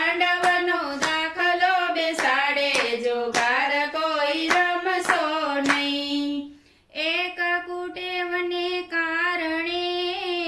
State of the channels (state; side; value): identical; both; correlation 1.00